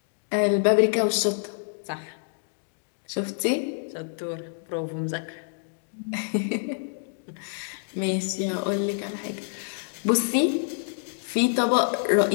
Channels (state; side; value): silent; right; digital silence